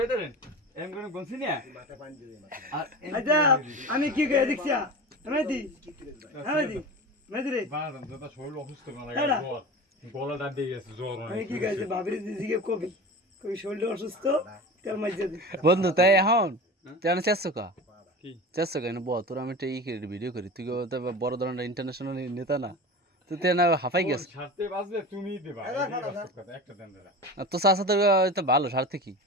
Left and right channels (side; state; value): both; normal; correlation 0.32